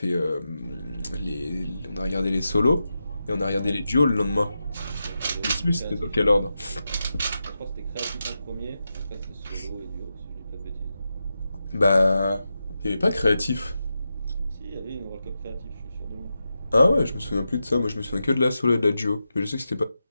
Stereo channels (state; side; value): inverted; both; correlation -0.89